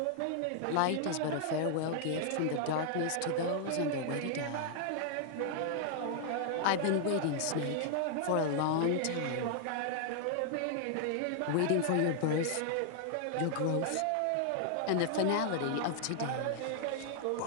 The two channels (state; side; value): different; both; correlation -0.01